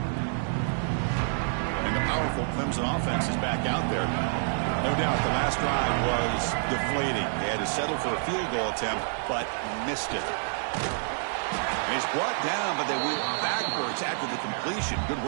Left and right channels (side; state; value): left; silent; digital silence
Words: And the powerful Clemson offense is back out there. No doubt the last drive was deflating. They had to settle for a field goal attempt, but missed it. And he's brought down, but they went backwards after the completion. Good